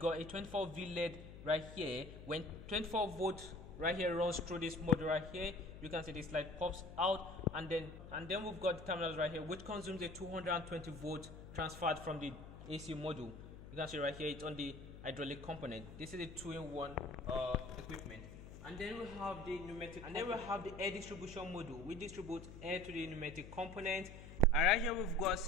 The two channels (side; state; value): left; noise; hum, 13 dB below the sound